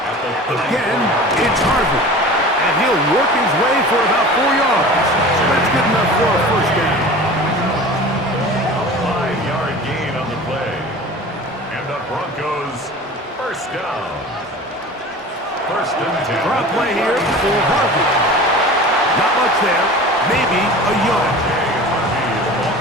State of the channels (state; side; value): normal; both; correlation 0.38